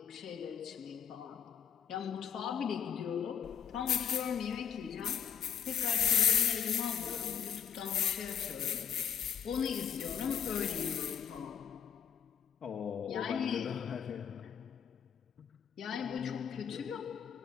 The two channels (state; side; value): quieter; right; 8.2 dB